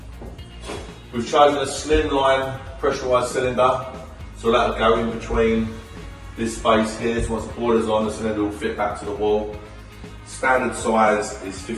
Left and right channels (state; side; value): identical; both; correlation 1.00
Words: We've chosen a slimline pressurised cylinder, so that'll go in between this space here, so once the boiler's on, the cylinder will fit back to the wall. Standard size is